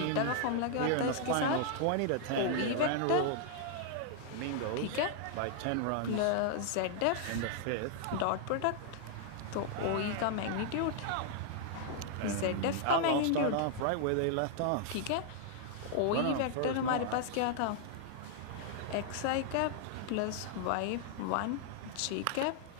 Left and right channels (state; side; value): different; both; correlation -0.01